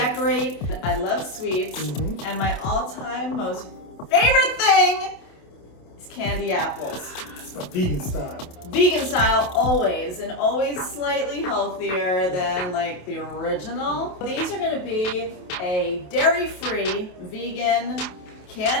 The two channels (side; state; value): right; late; 28 ms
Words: I love sweets. And my all-time most favorite thing is candy apples. It's my vegan style. Vegan style always, and always slightly healthier than like the original. These are gonna be a dairy-free vegan